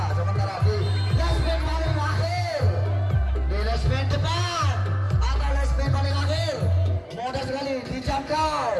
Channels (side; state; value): both; identical; correlation 1.00